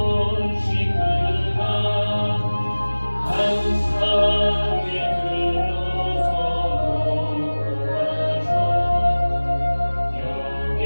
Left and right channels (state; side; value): inverted; both; correlation -1.00